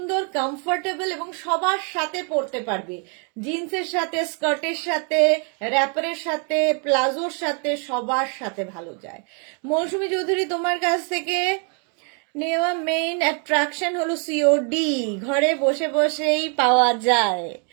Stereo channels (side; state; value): left; quieter; 39.5 dB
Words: কমফোর্টেবল এবং সবার সাথে পরতে পারবে। জিন্সের সাথে, স্কার্টের সাথে, র্যাপারের সাথে, প্লাজোর সাথে, সবার সাথে ভালো যায়। মৌসুমী চৌধুরী, তোমার কাছ থেকে নেওয়া মেইন অ্যাট্রাকশন হলো সিওডি, ঘরে বসে বসেই পাওয়া যায়।